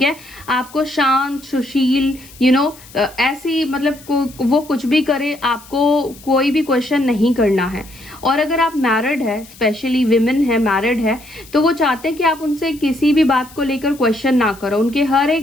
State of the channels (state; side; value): noise; left; hiss, 21 dB below the sound